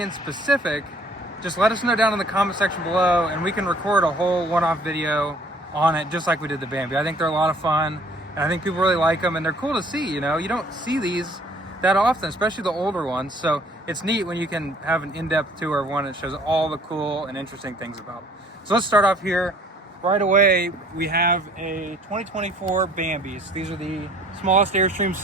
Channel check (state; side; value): normal; both; correlation 0.56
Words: specific, just let us know down in the comment section below, and we can record a whole one-off video on it, just like we did the Bambi. I think they're a lot of fun. And I think people really like them, and they're cool to see, you know? You don't see these that often, especially the older ones. So it's neat when you can have an in-depth tour of one that shows all the cool and interesting things about them. So let's start off here. Right away, we have a 2024 Bambis. These are the smallest Airstreams